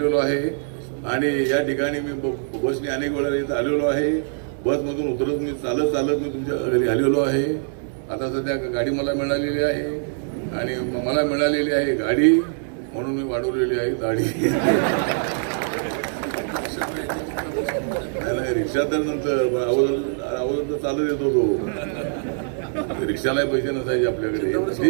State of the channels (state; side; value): silent; left; digital silence